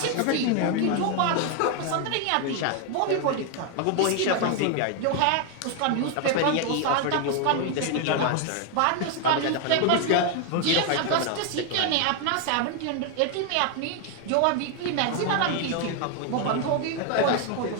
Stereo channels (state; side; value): different; both; correlation 0.01